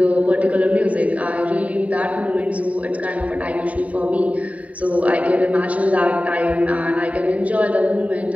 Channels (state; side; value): late; left; 0.068 ms